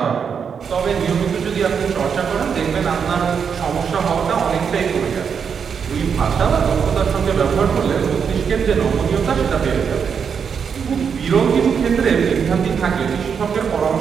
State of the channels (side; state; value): left; quieter; 6.7 dB